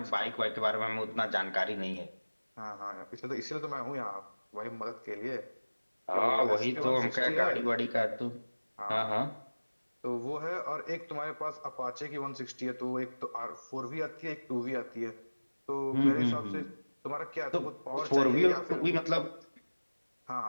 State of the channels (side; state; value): both; inverted; correlation -1.00